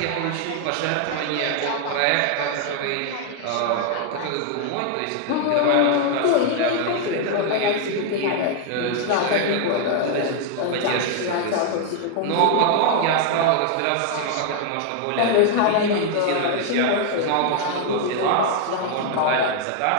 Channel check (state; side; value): different; both; correlation 0.00